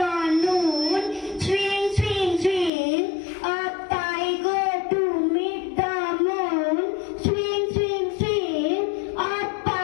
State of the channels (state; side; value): drops out; right; at 2.7 s